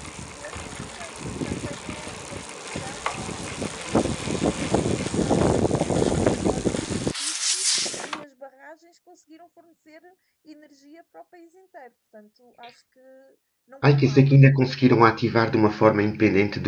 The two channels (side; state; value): both; identical; correlation 1.00